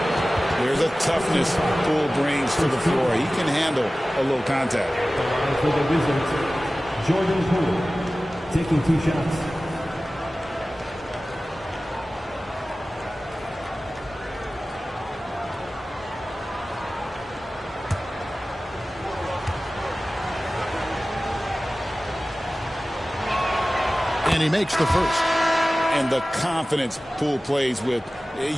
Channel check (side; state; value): both; normal; correlation 0.97